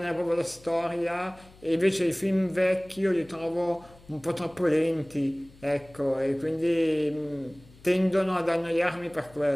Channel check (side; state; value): left; noise; hum, 24 dB below the sound